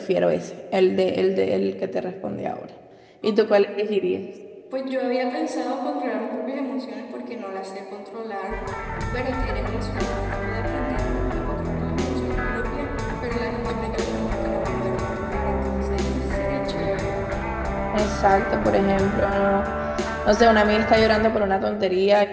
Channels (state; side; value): identical; both; correlation 1.00